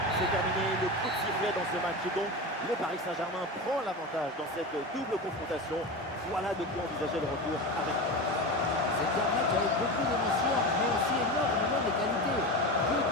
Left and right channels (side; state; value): both; normal; correlation 0.24